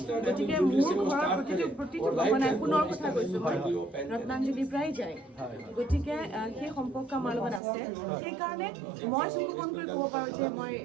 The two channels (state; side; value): drops out; left; at 7.6 s